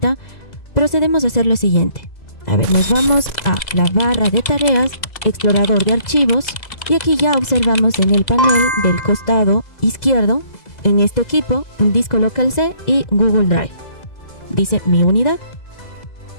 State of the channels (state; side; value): late; right; 2.0 ms